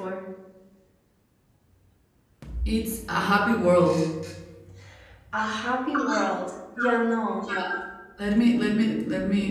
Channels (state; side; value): identical; both; correlation 1.00